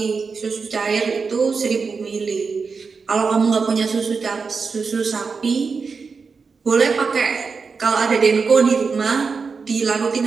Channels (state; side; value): quieter; left; 5.0 dB